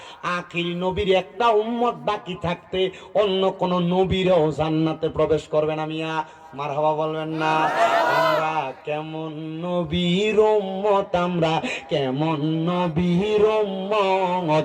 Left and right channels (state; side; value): identical; both; correlation 1.00